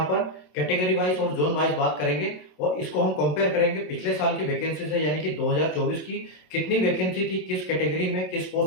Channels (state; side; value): late; right; 27 ms